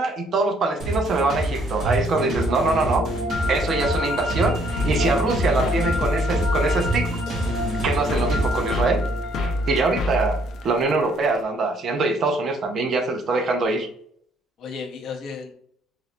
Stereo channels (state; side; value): normal; both; correlation 0.66